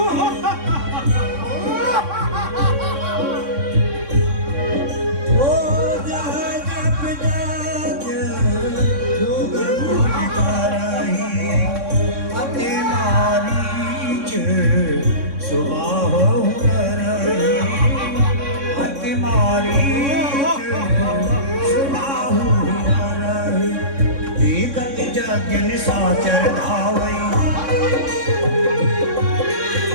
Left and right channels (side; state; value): left; late; 3.6 ms